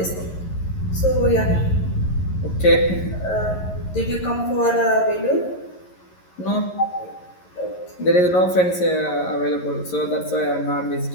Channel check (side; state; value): right; late; 11 ms